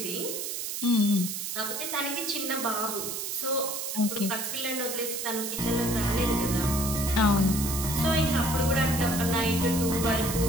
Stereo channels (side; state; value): right; noise; hiss, 4 dB below the sound